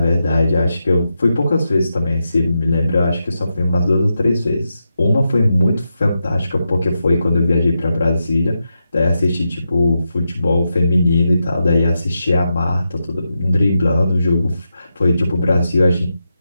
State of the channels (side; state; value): both; inverted; correlation -0.87